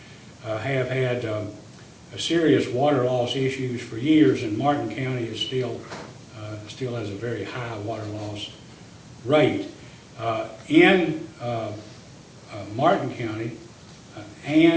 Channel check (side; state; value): both; identical; correlation 1.00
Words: have had serious water loss issues for years, and Martin County is still has a very high water loss rate. In Martin County